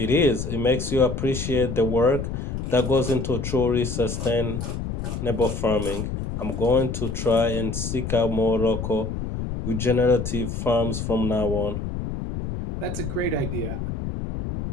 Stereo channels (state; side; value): noise; left; rumble, 4 dB below the sound